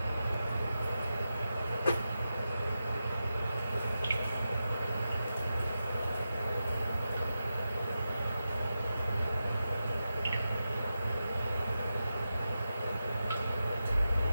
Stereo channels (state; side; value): inverted; both; correlation -0.89